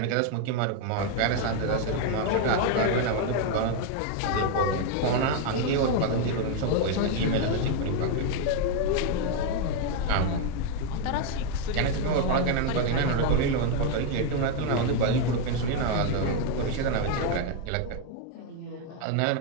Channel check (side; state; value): both; different; correlation 0.01